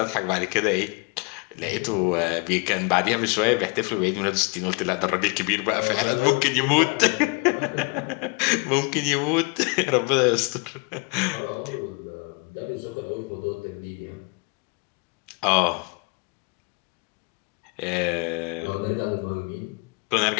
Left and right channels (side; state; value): right; quieter; 30.5 dB